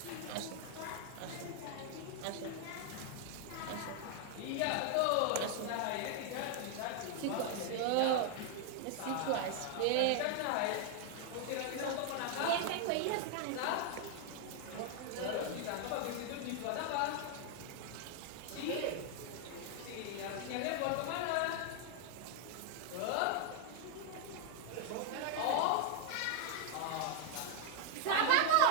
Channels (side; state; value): both; different; correlation 0.00